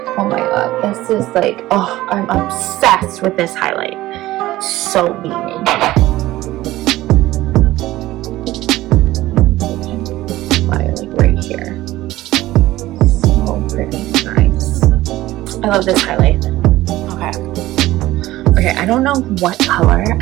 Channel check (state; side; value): quieter; left; 16.5 dB